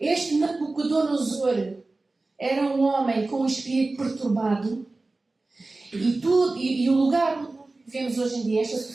Nabucodonosor era um homem com um espírito perturbado. E o lugar onde nós vivemos hoje em dia, esta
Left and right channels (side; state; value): left; quieter; 3.2 dB